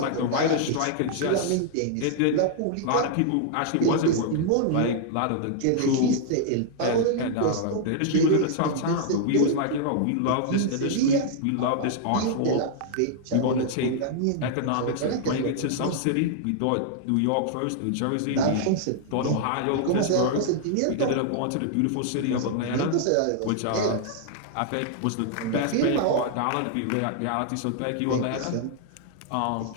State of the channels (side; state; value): both; different; correlation -0.01